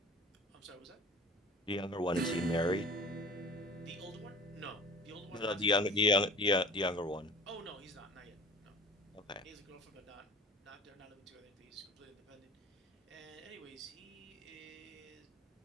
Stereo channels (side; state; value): both; normal; correlation 0.42